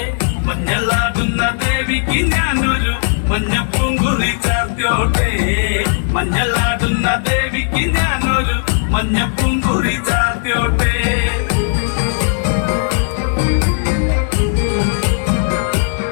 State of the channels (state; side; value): silent; right; digital silence